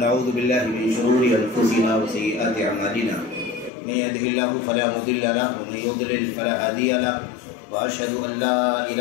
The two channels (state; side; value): drops out; right; at 3.7 s